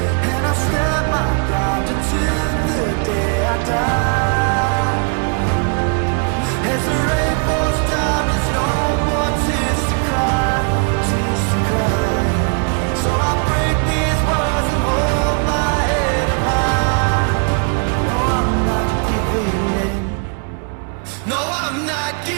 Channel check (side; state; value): left; quieter; 39.7 dB